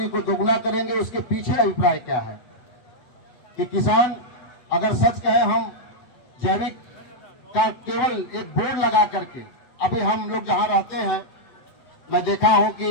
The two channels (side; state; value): right; late; 7.9 ms